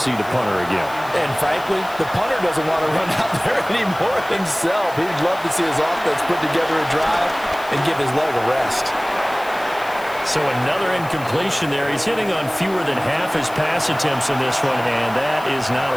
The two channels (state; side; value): noise; left; hiss, 20 dB below the sound